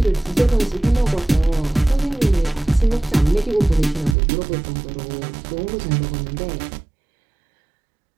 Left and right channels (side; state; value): left; drops out; at 4.2 s